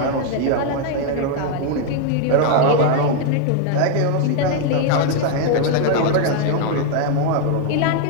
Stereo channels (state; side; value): different; both; correlation 0.00